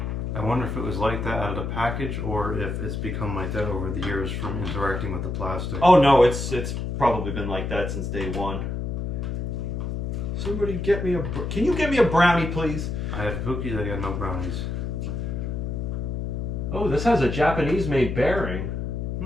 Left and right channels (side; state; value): left; noise; hum, 3 dB below the sound